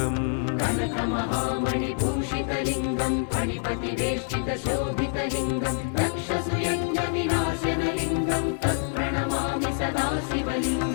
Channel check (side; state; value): right; silent; 61 dB below the other